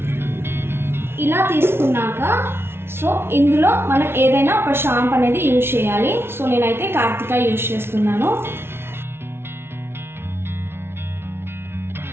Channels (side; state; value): left; late; 0.12 ms